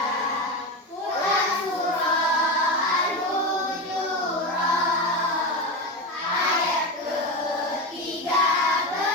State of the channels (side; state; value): both; normal; correlation 0.18